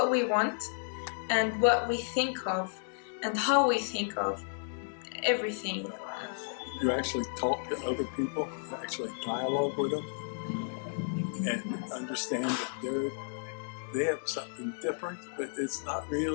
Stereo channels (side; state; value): right; silent; digital silence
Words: we want and what we think of and how we think of everything. You actually talk to other people, you actually dialogue with them, and understand that they have something different, but it's not